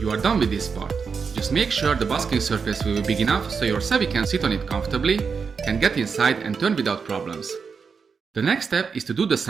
are done with this part. Just make sure the basking surface will be big enough so your savvy can sit on it comfortably, can get inside and turn without problems. The next step is to do the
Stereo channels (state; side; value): quieter; left; 5.6 dB